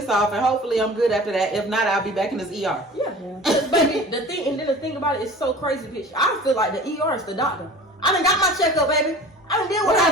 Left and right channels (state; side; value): normal; both; correlation 0.41